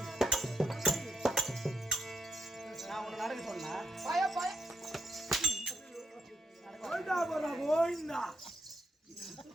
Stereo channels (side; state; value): both; normal; correlation 0.81